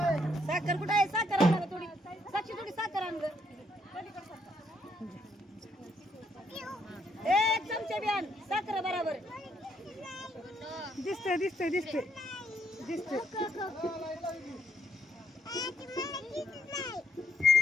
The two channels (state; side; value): normal; both; correlation 0.72